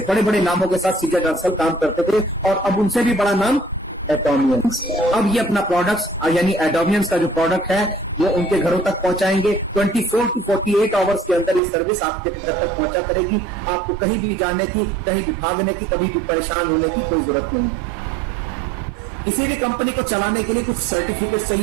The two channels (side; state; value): left; drops out; at 11.6 s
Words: बड़े बड़े नामों के साथ सीजे डार्सल काम करते थे, और अब उनसे भी बड़ा नाम एटॉमियंस। अब ये अपना प्रोडक्ट्स यानी एटॉमियंस का जो प्रोडक्ट है वो उनके घरों तक पहुंचाएंगे। 24 to 48 आवर्स के अंदर ये सर्विस आपके घर तक पहुंचा करेगी। आपको कहीं भी जाने की, कहीं भी भागने की, कभी भी परेशान होने की कोई जरूरत नहीं है। किसी भी कंपनी को चलाने के लिए कुछ सर्टिफिकेट